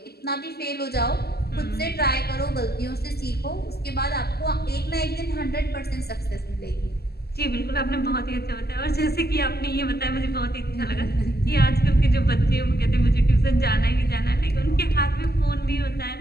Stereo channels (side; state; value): right; late; 0.46 ms